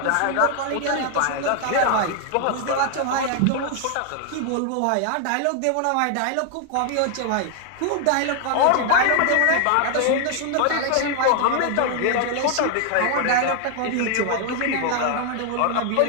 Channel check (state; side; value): different; both; correlation 0.00